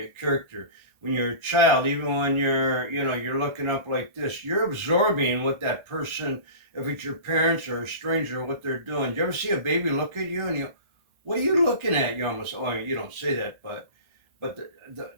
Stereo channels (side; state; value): left; late; 1.3 ms